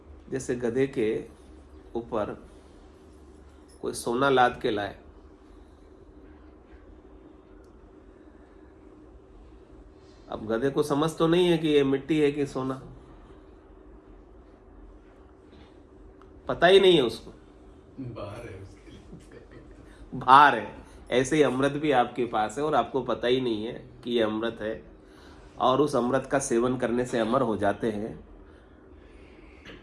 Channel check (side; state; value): both; identical; correlation 1.00